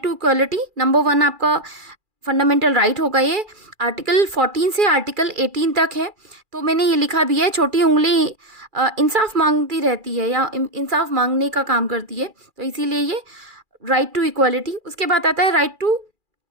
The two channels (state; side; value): late; left; 2.4 ms